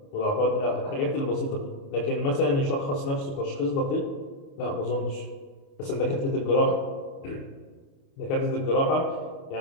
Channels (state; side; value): late; right; 29 ms